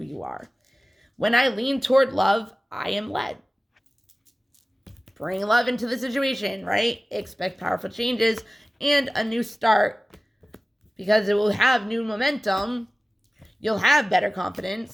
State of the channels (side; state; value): both; normal; correlation 0.97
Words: you are. When I lean toward love, I am led. Bring love into the situation, right? Expect powerful changes and a new start, because it will have new momentum. You'll have better